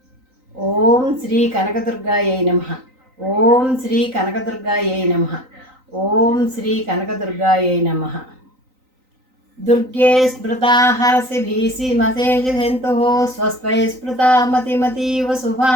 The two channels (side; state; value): left; late; 3.9 ms